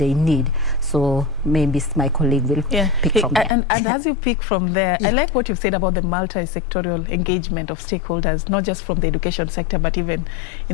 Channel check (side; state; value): right; drops out; at 3.5 s